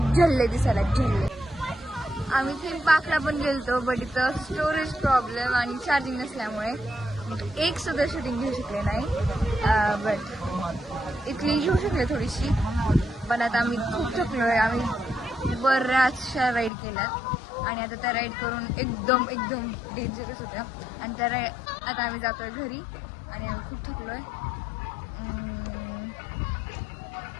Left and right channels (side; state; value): right; drops out; at 16.7 s